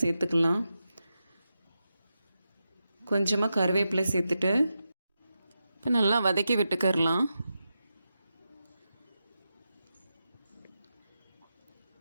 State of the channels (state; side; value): inverted; both; correlation -0.89